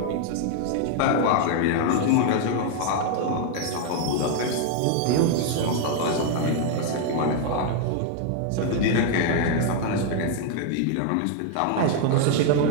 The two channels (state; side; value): different; both; correlation 0.00